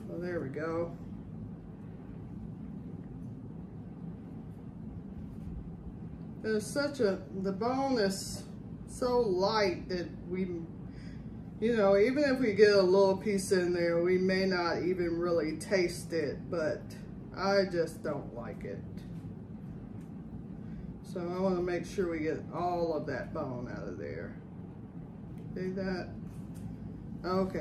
So there we go. The bone is so light that we, you know, even if we get a little piece in there, we may not even really taste it, but I just don't like it. So I want to make sure we get all of that bone out of there. See that?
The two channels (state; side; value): identical; both; correlation 1.00